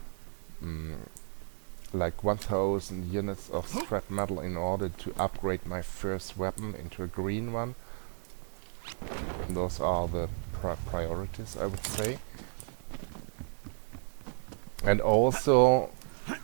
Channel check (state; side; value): silent; left; digital silence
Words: like 1,000 units of scrap metal in order to upgrade my first weapon into a green one. Those are the priorities, I would say. And also